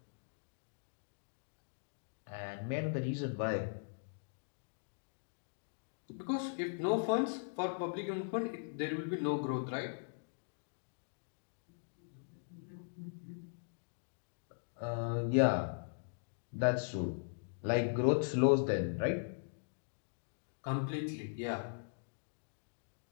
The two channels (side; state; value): right; silent; digital silence